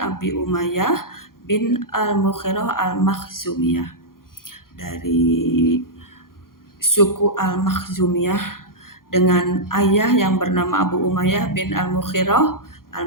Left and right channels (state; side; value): late; right; 0.91 ms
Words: Umayyah bin Al-Mughirah Al-Makhzumiyah, dari suku Al-Makhzumiyah, dengan ayah yang bernama Abu Umayyah bin Al-Mughirah